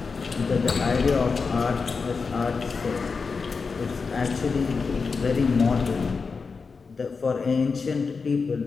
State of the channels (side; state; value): right; quieter; 4.9 dB